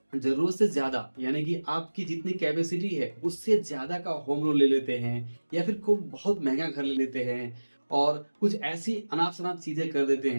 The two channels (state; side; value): inverted; both; correlation -1.00